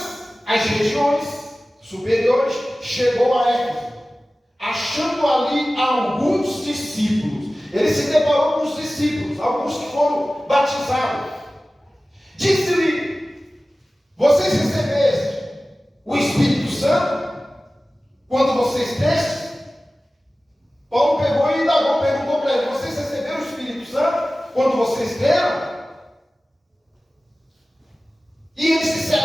as regiões superiores, chegou a Éfeso, achando ali alguns discípulos. Ele se deparou com os discípulos, alguns que foram batizados. Disse-lhe: vocês recebeste o Espírito Santo quando vocês destes? Paulo pegou e indagou, perguntou para ele: vocês receberam o Espírito Santo quando vocês deram? E eles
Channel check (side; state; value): both; normal; correlation 0.97